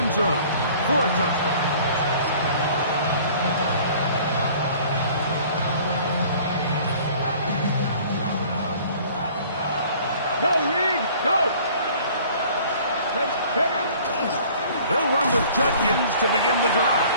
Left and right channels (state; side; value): inverted; both; correlation -0.51